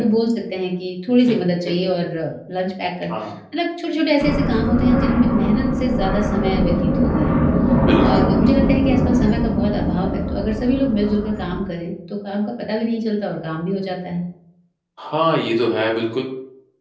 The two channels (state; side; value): identical; both; correlation 1.00